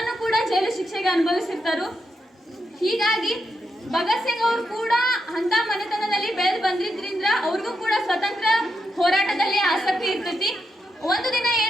ಕೂಡ ಜೈಲು ಶಿಕ್ಷೆಗೆ ಅನುಭವಿಸಿರ್ತಾರು. ಹೀಗಾಗಿ ಭಗತ್ ಸಿಂಗ್ ಅವ್ರು ಕೂಡ ಅಂತ ಮನೆತನದಲ್ಲಿ ಬೆಳೆದು ಬಂದಿದ್ರಿಂದ ಅವ್ರಿಗೂ ಕೂಡ ಸ್ವತಂತ್ರ ಹೋರಾಟದಲ್ಲಿ ಆಸಕ್ತಿ ಇರ್ತೈತಿ. ಒಂದು ದಿನ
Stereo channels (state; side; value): normal; both; correlation 0.83